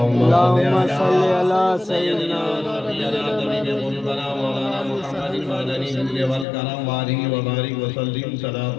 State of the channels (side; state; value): right; drops out; at 6.5 s